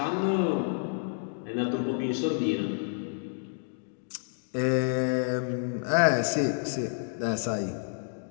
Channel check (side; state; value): right; silent; digital silence